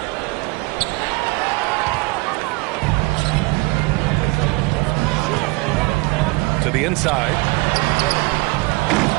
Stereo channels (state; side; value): quieter; left; 25.0 dB